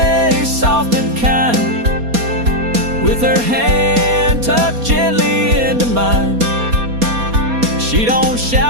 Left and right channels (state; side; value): late; left; 4.2 ms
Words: soft and kind, with her hand tucked gently into mine. She don't